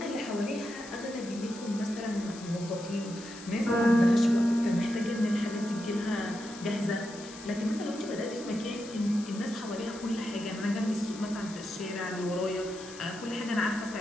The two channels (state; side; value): noise; left; hiss, 16 dB below the sound